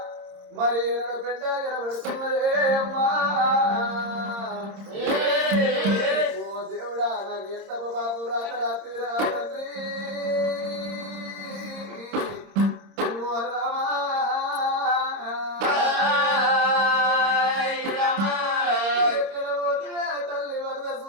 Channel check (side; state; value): left; late; 26 ms